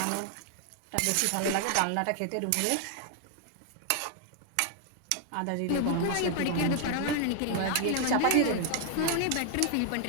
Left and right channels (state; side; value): different; both; correlation 0.00